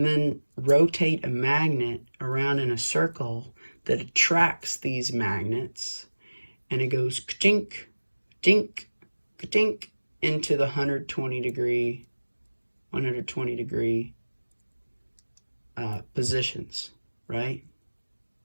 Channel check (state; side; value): inverted; both; correlation -1.00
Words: then rotate a magnet around in a circle that attracts these magnets, and it goes ka-tink, ka-tink, ka-tink into the 120 degree positions, right?